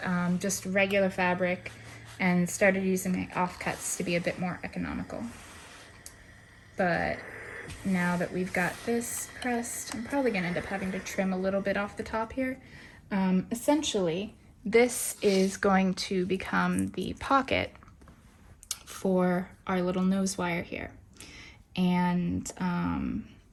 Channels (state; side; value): identical; both; correlation 1.00